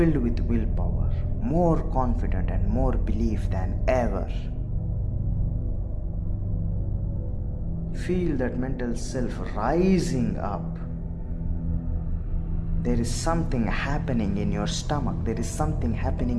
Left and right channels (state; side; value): identical; both; correlation 1.00